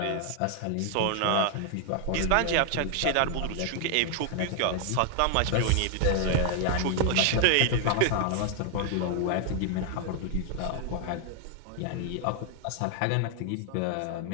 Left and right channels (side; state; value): both; different; correlation 0.00